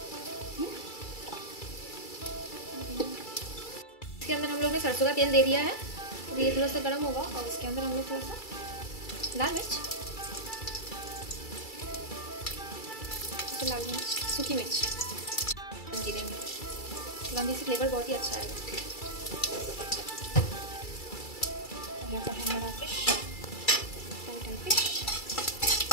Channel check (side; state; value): right; late; 2.3 ms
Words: इसके अंदर हम लोग ने सरसों का तेल दे दिया है। तो ये थोड़ा सा गर्म होगा, और इसके अंदर हम लोग थोड़ा सा लाल मिर्च, फिर लाल मिर्च, सूखी मिर्च देंगे। लौंगी से फ्लेवर बहुत ही अच्छा आएगा। यहाँ पर है हमारा फिश, टाइट फिश।